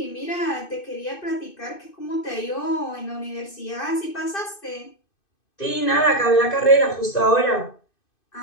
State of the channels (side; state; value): right; late; 2.5 ms